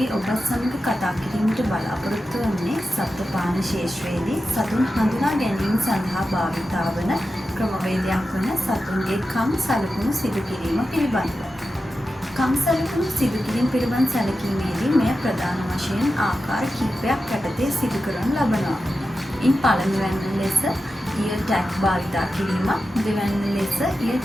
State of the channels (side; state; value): both; normal; correlation 0.91